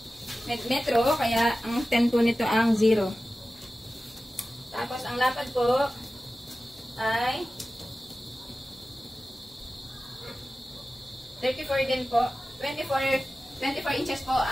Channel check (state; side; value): normal; both; correlation 0.95